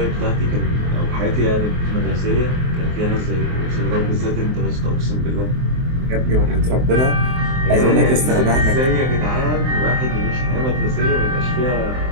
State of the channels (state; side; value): late; left; 23 ms